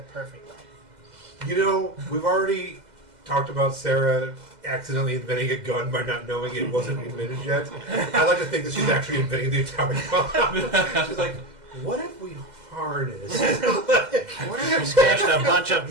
perfect length. We've already talked about Sarah accidentally inventing a gun by not knowing it wasn't invented yet. I like to think that she's actually inventing the atomic bomb. She's like, what if we harness? What if we smashed a bunch of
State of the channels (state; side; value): late; left; 2.0 ms